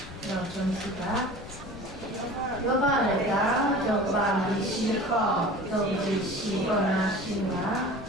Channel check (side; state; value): left; noise; rumble, 16 dB below the sound